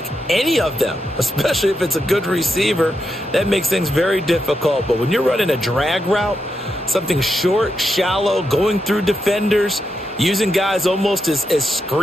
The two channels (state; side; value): normal; both; correlation 0.85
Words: any of them, especially if it's a good receiver. That makes things very difficult. But when you're running a drag route, something short, shallow, going through defenders, using guys almost as